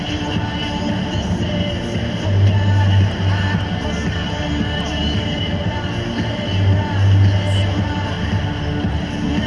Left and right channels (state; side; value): identical; both; correlation 1.00